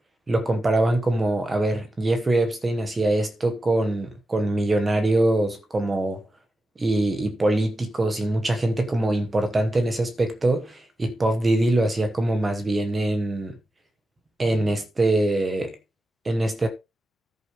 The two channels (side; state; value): both; normal; correlation 0.91